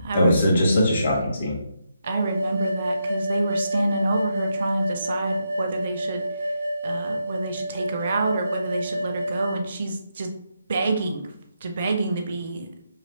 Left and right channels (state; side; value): inverted; both; correlation -0.82